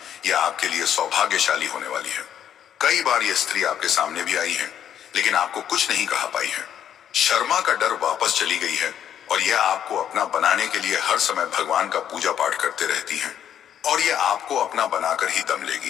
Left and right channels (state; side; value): quieter; right; 9.7 dB